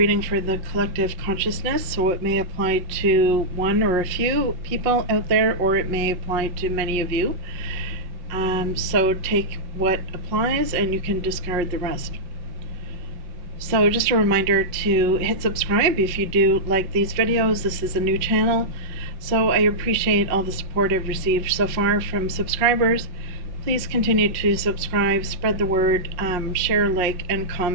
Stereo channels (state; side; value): late; left; 5.6 ms